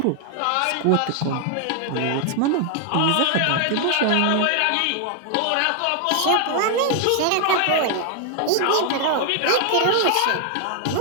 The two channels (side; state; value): both; different; correlation 0.00